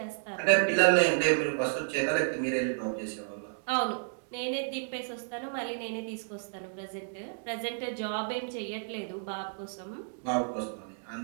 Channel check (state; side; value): silent; left; digital silence